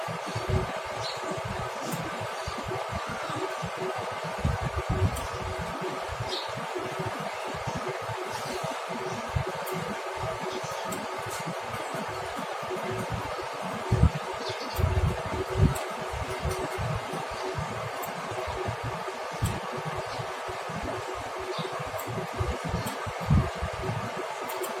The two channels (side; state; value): both; identical; correlation 1.00